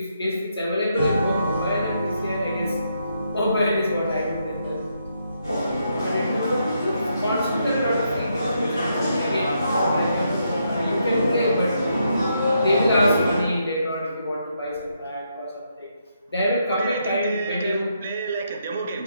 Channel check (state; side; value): inverted; both; correlation -0.78